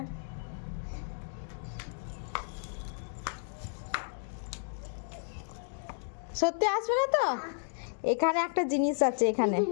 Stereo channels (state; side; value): silent; right; digital silence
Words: সত্যি আসবে না তো? এখানে একটা জিনিস আছে, এখানে